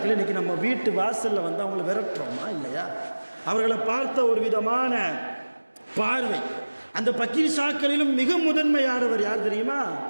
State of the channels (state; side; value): inverted; both; correlation -1.00